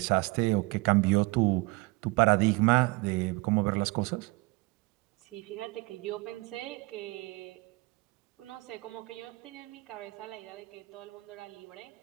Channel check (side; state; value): left; quieter; 25.4 dB